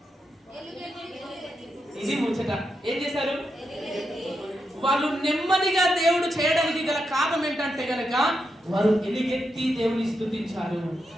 ఇది ముచ్చట. ఏం చేశారు వాళ్ళు? నెమ్మదిగా దేవుడు చేయడానికి గల కారణం ఏంటంటే గనక వారు ఎలుగెత్తి దేవుని స్తుతించారు,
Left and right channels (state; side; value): normal; both; correlation 0.85